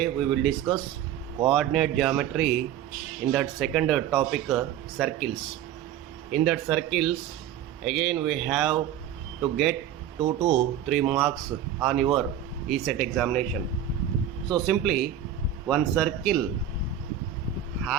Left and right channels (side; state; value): left; quieter; 10.1 dB